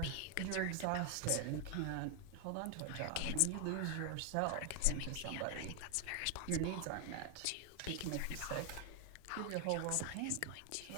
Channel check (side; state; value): both; different; correlation 0.00